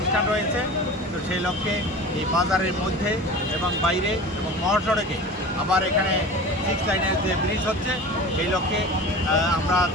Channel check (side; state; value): both; normal; correlation 0.36